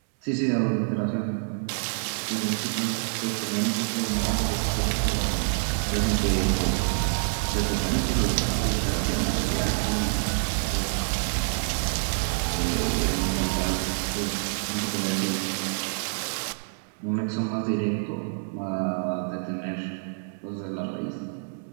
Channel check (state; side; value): silent; left; 60 dB below the other